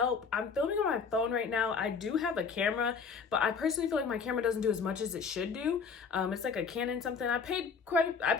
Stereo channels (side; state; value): right; quieter; 5.6 dB